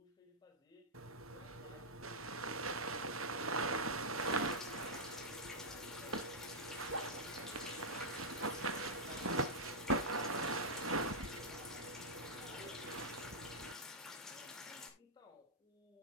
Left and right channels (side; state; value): both; normal; correlation -0.07